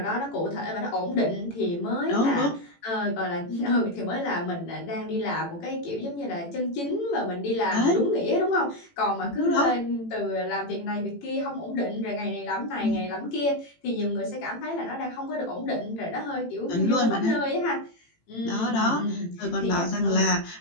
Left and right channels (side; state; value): right; late; 18 ms